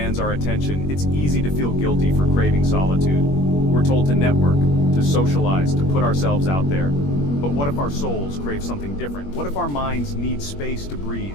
our attention, it's easy to feel guilty for craving solitude. We're told to network, to socialize, to put ourselves out there. But what if our souls crave something different? What if our minds need space to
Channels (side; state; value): right; late; 21 ms